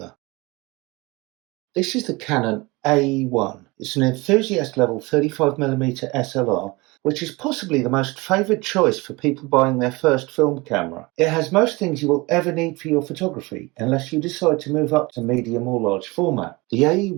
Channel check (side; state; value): left; quieter; 23.9 dB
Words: This is the Canon AE1. It's an enthusiast level 35mm SLR, which is possibly the most favoured choice for people buying their first film camera. It has most things you will ever need for your photography, unless you decide to move up to medium or large format. The